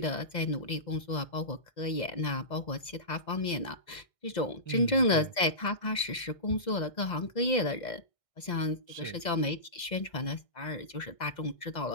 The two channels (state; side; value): late; right; 2.0 ms